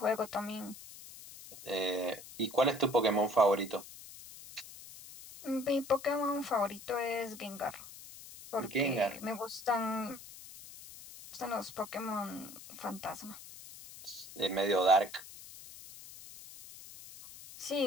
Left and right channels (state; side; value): noise; left; hiss, 16 dB below the sound